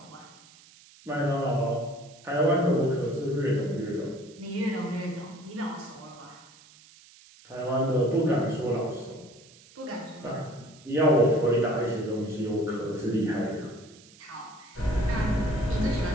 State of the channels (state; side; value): noise; right; hiss, 24 dB below the sound